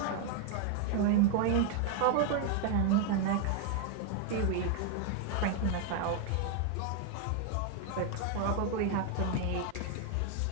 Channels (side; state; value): both; different; correlation 0.00